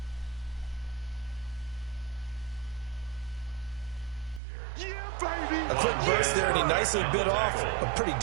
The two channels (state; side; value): drops out; left; at 4.4 s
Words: A quick burst there, and he nicely bit off a pretty